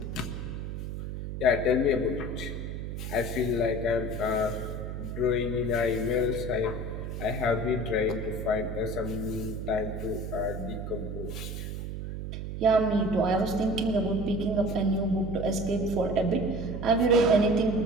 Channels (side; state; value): right; noise; hum, 6 dB below the sound